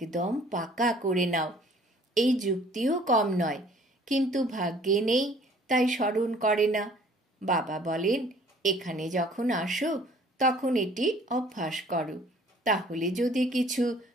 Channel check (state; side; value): normal; both; correlation 0.55